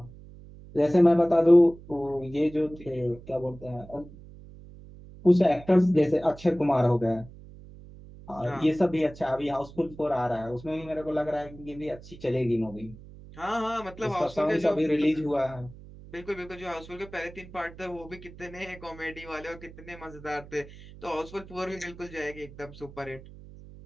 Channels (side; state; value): right; noise; hum, 18 dB below the sound